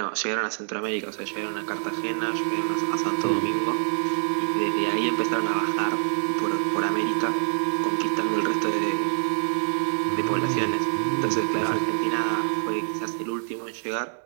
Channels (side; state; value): left; silent; digital silence